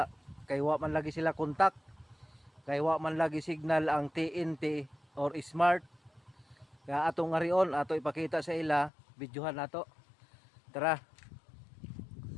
kay wa man lagi sila kontak. Kay wa man lagi signal ang TNT or Smart. Kaya atong ngarion ato ipakita sa ila, videohan nato. Tara.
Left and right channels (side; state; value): right; drops out; at 8.9 s